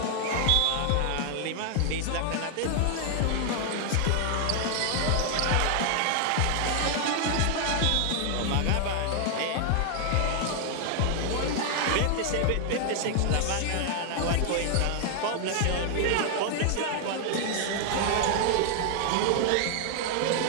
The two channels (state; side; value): different; both; correlation 0.00